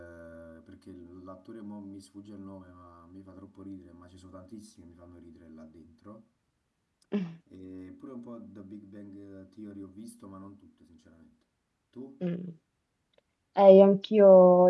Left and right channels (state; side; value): identical; both; correlation 1.00